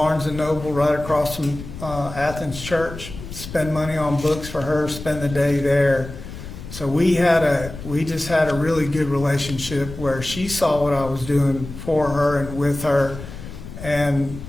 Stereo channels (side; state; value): left; noise; rumble, 12 dB below the sound